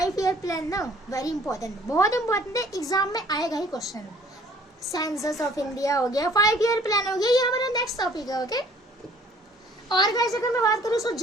ईयर प्लान ना वेरी इंपॉर्टेंट, बहुत इंपॉर्टेंट है, एग्जाम में आएगा ही क्वेश्चन। सेंसस ऑफ इंडिया हो गया, 5 ईयर प्लान हो गया, ये हमारा नेक्स्ट टॉपिक है, ओके। और गाइस अगर मैं बात करूँ तो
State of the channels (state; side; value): normal; both; correlation 0.56